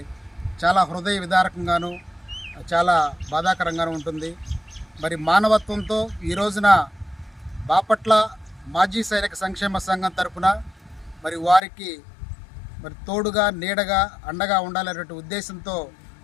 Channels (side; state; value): right; drops out; at 11.6 s